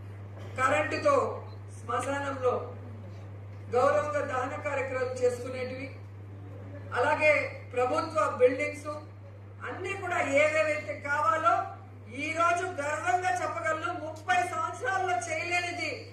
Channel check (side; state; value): both; identical; correlation 1.00